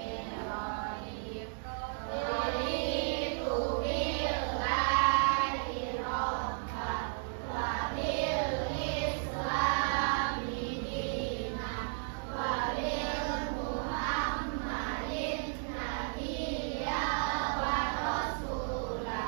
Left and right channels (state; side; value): silent; left; 55 dB below the other